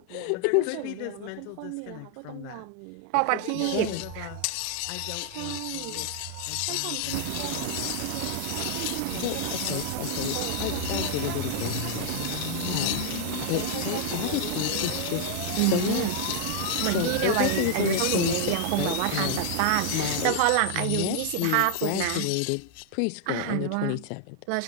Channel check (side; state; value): both; different; correlation 0.00